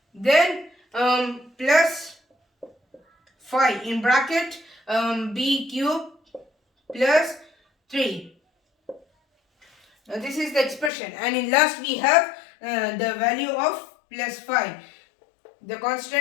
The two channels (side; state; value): right; drops out; at 10.9 s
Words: then plus 5 in bracket b cube plus 3. Now this is the expression, and in last we have the value of plus 5, the